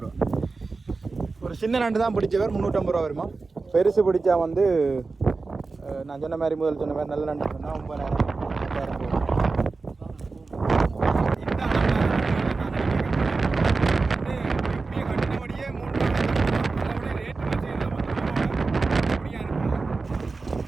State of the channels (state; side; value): quieter; left; 4.0 dB